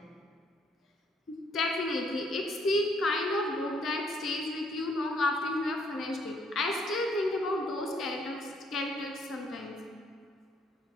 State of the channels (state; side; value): normal; both; correlation 0.67